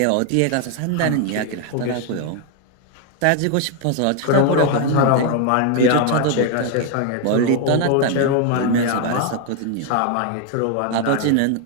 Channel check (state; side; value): different; both; correlation 0.01